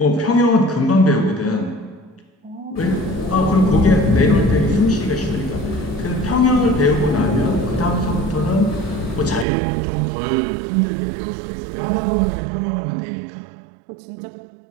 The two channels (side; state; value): left; drops out; at 9.5 s